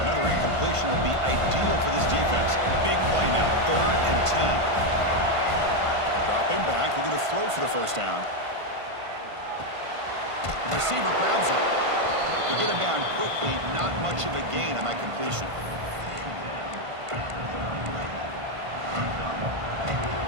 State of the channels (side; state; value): left; late; 1.5 ms